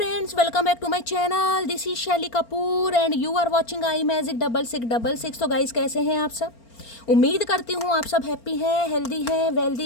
welcome back to my channel. This is Shelly Kapoor and you are watching I magic 6666। तो गाइस कैसे हैं आप सब? उम्मीद करती हूँ आप सब हैप्पी हैं, हेल्दी हैं,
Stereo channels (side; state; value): right; late; 4.4 ms